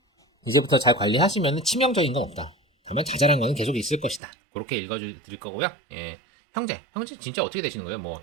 이제부터 잘 관리하시면 치명적인 건 없다. 다만 자잘한 거는 계속 있을 것이다. 그렇게 읽어드릴 거고요. 형제 진짜 어떻게 되시는 거예요? 뭐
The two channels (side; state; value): left; drops out; at 4.2 s